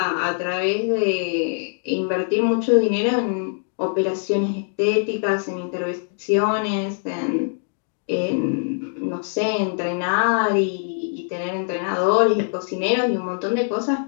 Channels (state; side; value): silent; right; 64 dB below the other